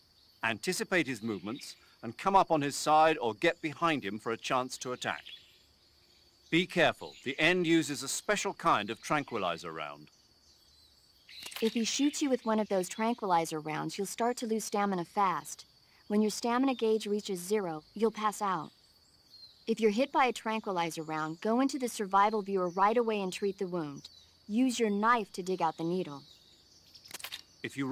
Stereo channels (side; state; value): both; identical; correlation 1.00